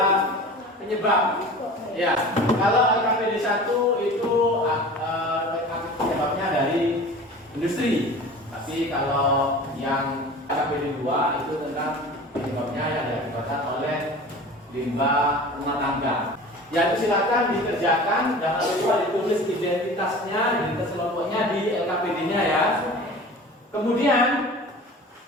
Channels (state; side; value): normal; both; correlation 0.39